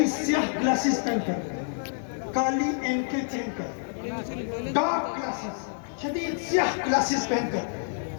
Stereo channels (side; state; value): right; silent; digital silence